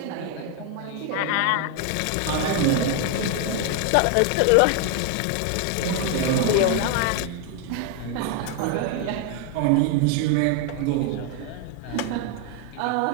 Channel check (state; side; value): different; both; correlation 0.01